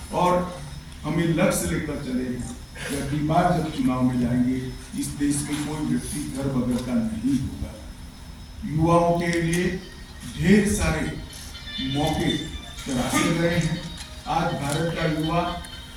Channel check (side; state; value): both; identical; correlation 1.00